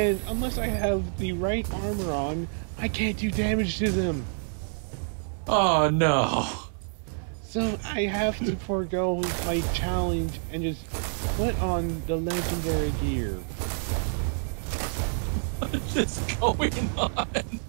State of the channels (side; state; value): left; silent; digital silence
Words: unless I have the right armor on, I can't do damage to them. Oh no. So I have to forego my challenge and just put on the legendary gear. What is going on?